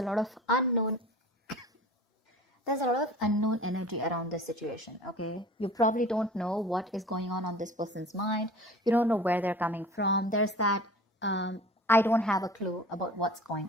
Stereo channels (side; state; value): both; normal; correlation 0.42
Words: lot of unknown. There's a lot of unknown energy around this situation, okay? You probably don't know what is going on this person's mind. You don't know where they're coming from. There's that, I don't have a clue about what's